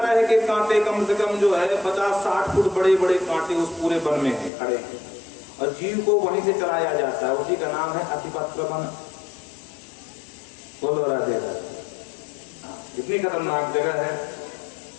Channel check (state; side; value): drops out; right; at 4.5 s